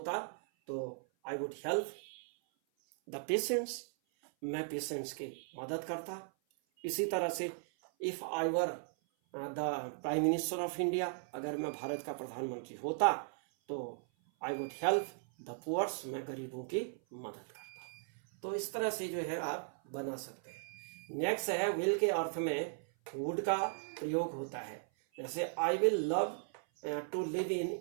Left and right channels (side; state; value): left; silent; 53 dB below the other